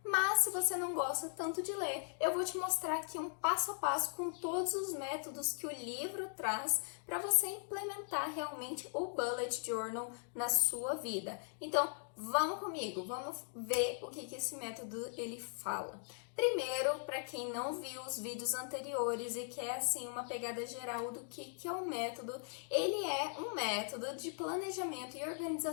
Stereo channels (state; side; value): silent; right; 52 dB below the other